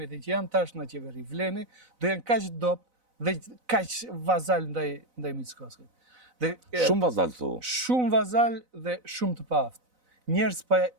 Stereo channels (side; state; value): left; late; 4.0 ms